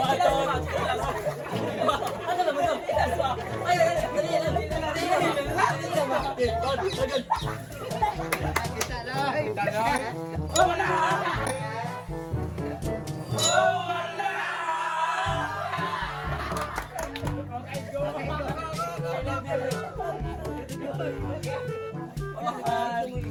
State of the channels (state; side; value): identical; both; correlation 1.00